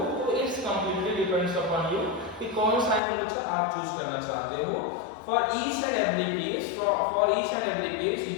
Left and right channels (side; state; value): right; drops out; at 3.0 s